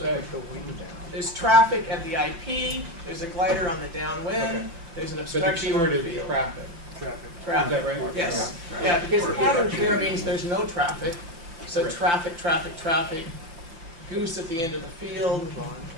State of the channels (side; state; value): left; late; 5.9 ms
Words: do you say? There's traffic at the IP, there's a glider on the downwind, Okay. there's an But the obstruction on keyword the is field. traffic. Traffic. Traffic. Is that right? Yes, yeah, because pattern clear means there's no traffic, so Right. traffic, goose at the end of the field,